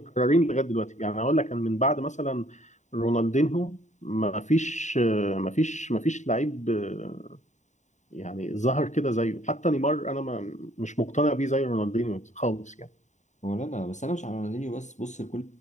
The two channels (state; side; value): late; right; 0.34 ms